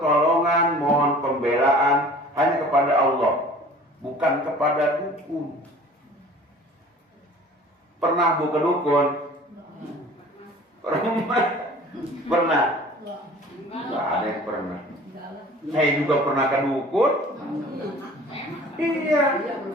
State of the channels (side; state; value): both; normal; correlation 0.46